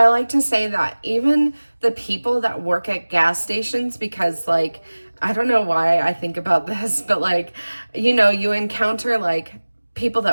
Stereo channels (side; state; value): both; inverted; correlation -1.00